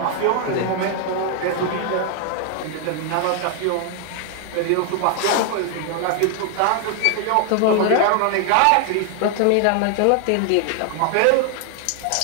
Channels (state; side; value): different; both; correlation 0.00